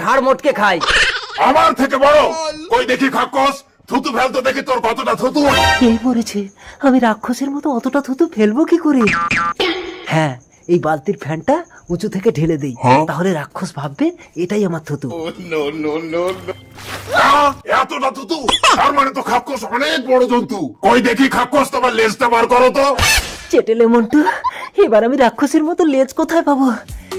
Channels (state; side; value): identical; both; correlation 1.00